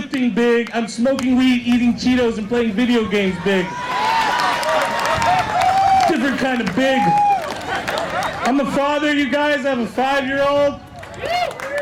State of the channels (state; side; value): identical; both; correlation 1.00